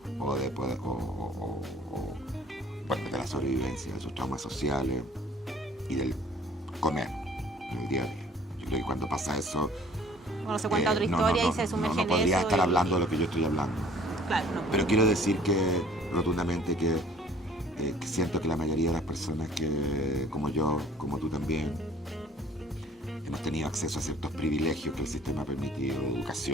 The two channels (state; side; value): normal; both; correlation 0.52